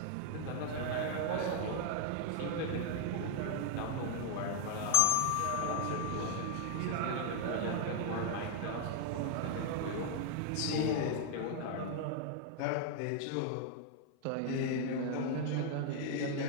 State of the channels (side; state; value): both; different; correlation -0.01